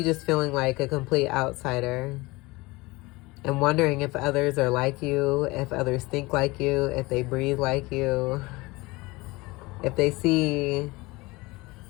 just feeling like a complete outsider and wondering if others are like you, if others think like you, if they breathe like you, if they see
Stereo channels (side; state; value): right; quieter; 22.6 dB